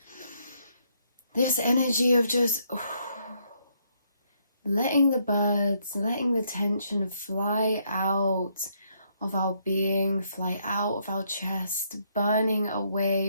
This energy of just letting the birds, letting the tension fly out of our being, fly out of our chest, burning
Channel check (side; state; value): both; inverted; correlation -0.72